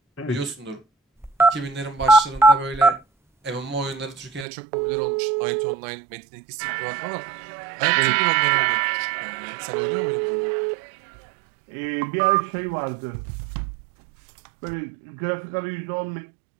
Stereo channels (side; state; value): left; drops out; at 4.5 s